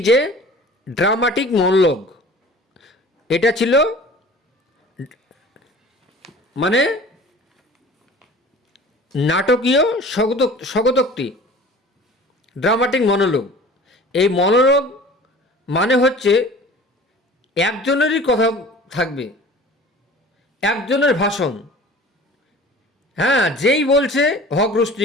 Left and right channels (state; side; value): normal; both; correlation 0.43